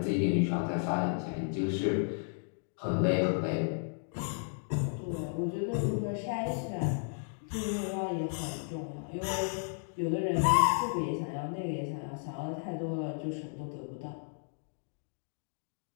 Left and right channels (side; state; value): right; silent; digital silence